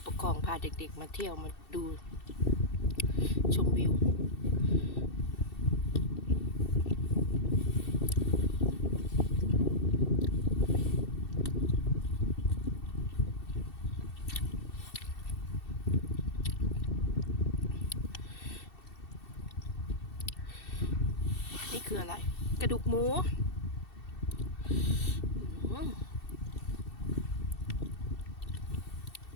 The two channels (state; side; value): late; right; 2.7 ms